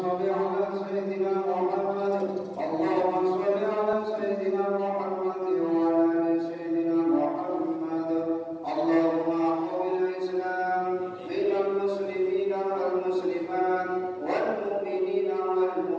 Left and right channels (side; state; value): both; identical; correlation 1.00